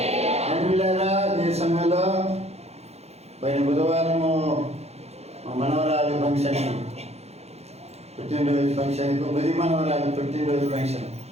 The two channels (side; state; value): left; late; 0.31 ms